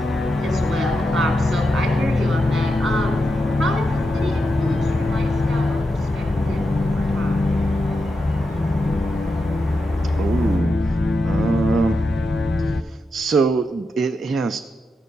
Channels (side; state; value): both; normal; correlation 0.87